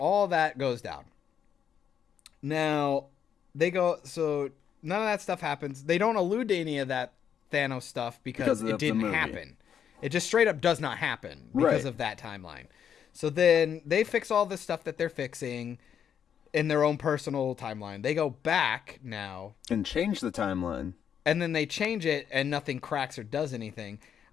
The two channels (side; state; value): right; quieter; 8.4 dB